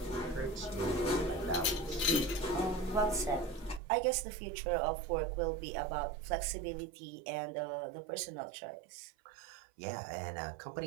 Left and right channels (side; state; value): left; drops out; at 3.8 s